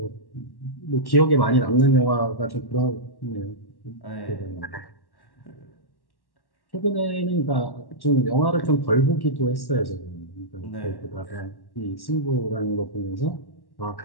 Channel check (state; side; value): late; right; 1.1 ms